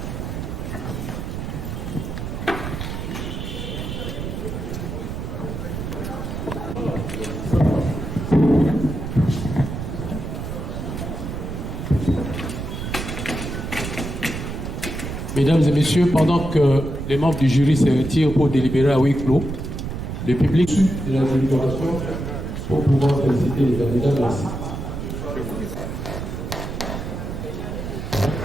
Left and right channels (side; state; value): right; noise; rumble, 5 dB below the sound